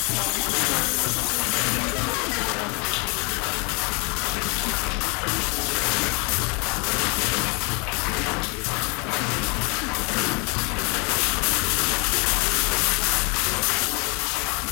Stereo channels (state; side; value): quieter; right; 32.2 dB